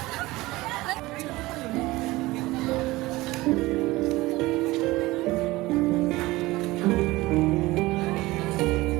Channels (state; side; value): quieter; left; 19.7 dB